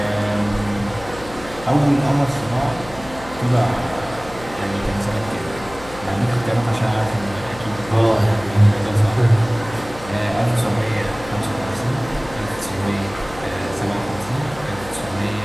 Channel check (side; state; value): left; noise; hum, 16 dB below the sound